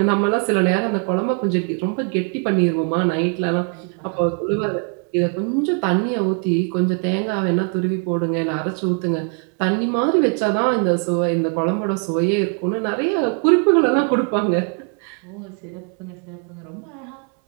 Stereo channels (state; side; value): quieter; left; 38.6 dB